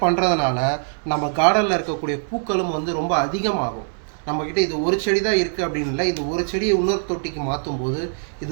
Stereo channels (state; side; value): silent; left; digital silence